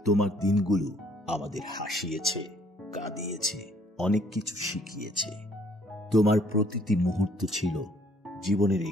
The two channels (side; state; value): both; normal; correlation 0.62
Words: তোমার দিনগুলো আমাদের হাসিয়েছে, কাঁদিয়েছে, অনেক কিছু শিখিয়েছে। তোমার প্রতিটি মুহূর্ত ছিল জীবনের